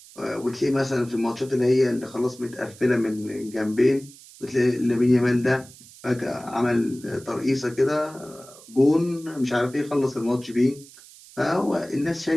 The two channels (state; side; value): noise; right; hiss, 21 dB below the sound